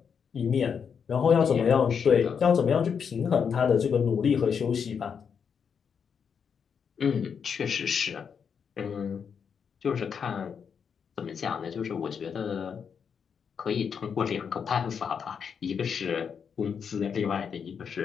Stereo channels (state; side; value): quieter; right; 6.8 dB